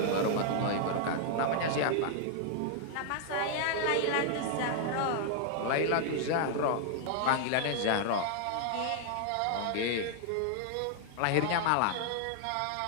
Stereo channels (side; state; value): both; different; correlation 0.00